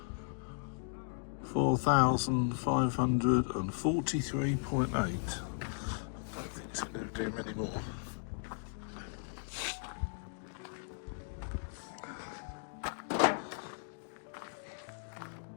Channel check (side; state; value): right; silent; digital silence